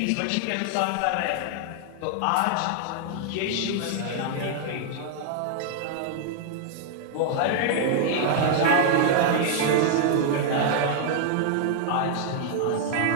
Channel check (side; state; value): both; different; correlation -0.01